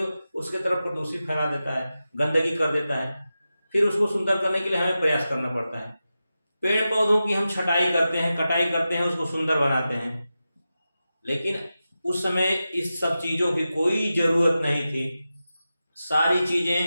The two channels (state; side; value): inverted; both; correlation -0.92